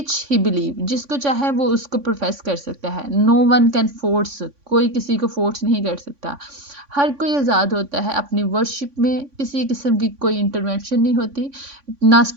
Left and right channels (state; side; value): late; left; 3.5 ms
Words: he believe, जिसको चाहे वो उसको प्रोफेस कर सकता है। नो वन कैन फोर्स, कोई किसी को फोर्स नहीं कर सकता। हर कोई आज़ाद होता है अपनी वर्शिप में, किसी किस्म की कोई इंटरवेंशन नहीं होती, ना